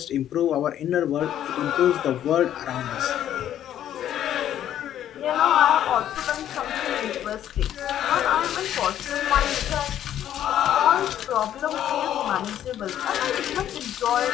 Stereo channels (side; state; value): right; quieter; 11.1 dB